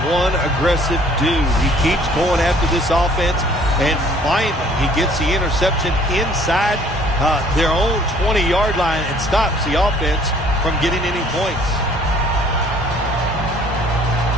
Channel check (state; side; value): normal; both; correlation 0.57